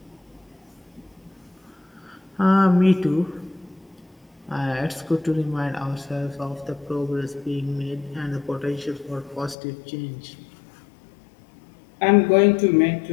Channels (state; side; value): drops out; right; at 9.6 s